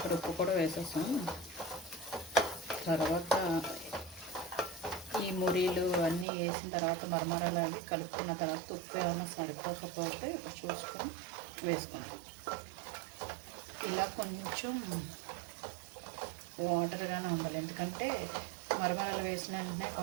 ఉప్పు కూడా వేసేసాం. తర్వాత ఈ మురీలు అన్నీ వేసిన తర్వాత మరమరాలు అవి కలుపుకున్న తర్వాత ఉప్పు ఏమైనా సరిపోకపోతే ఇప్పుడు చూసుకొని వేసుకుంటాం. ఇలా కొంచెం వాటర్గానే ఉండాలి, ఎందుకంటే మరమరాలు వేసిన వెంటనే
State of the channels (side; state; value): left; drops out; at 6.2 s